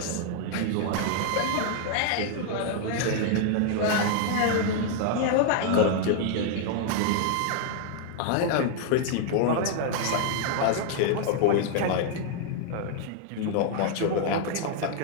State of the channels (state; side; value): different; both; correlation 0.00